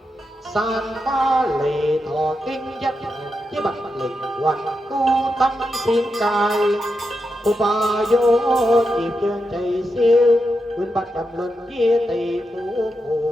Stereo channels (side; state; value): both; normal; correlation 0.86